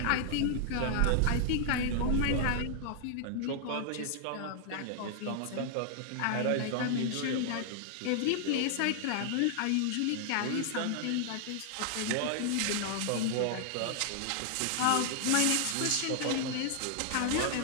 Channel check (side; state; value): both; different; correlation -0.01